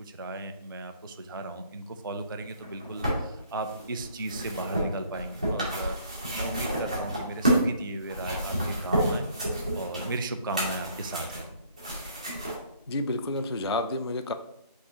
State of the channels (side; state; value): both; inverted; correlation -0.59